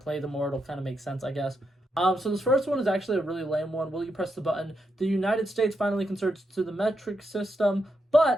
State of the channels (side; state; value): both; normal; correlation 0.83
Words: the more it'll kind of make sense, I guess. So this first one is actually a really lame one. Will you press the button? The United States finally converts to the metric system,